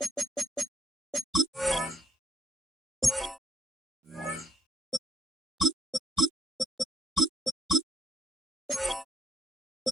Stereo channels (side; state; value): both; normal; correlation 0.72